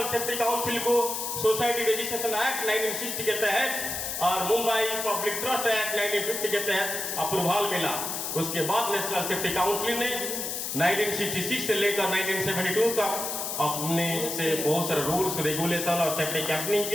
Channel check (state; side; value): noise; left; hiss, 3 dB below the sound